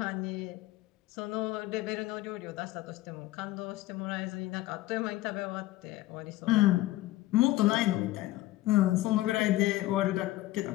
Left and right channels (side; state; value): right; quieter; 16.9 dB